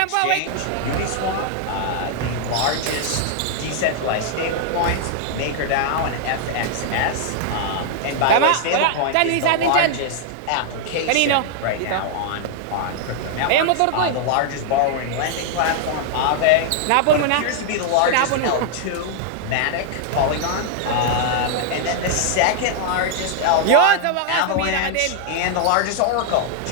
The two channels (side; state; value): both; different; correlation -0.01